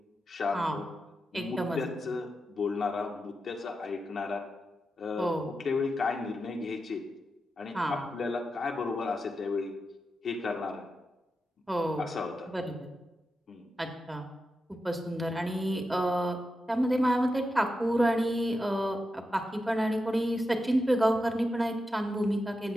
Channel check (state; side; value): normal; both; correlation 0.88